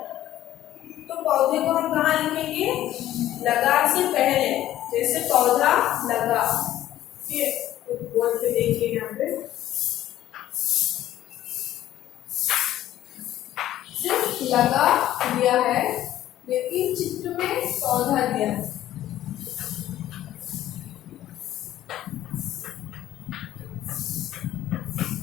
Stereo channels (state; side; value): quieter; right; 13.2 dB